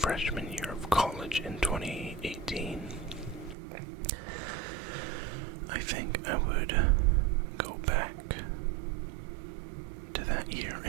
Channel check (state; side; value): drops out; left; at 3.6 s